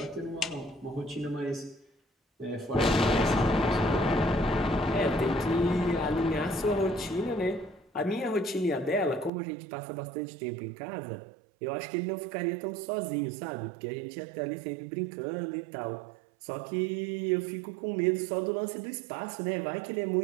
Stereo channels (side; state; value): left; drops out; at 9.3 s